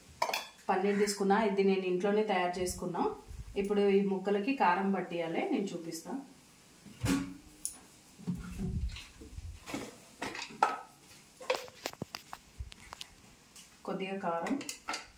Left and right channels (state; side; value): identical; both; correlation 1.00